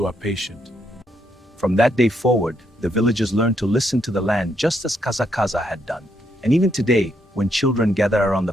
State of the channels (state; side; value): normal; both; correlation 0.76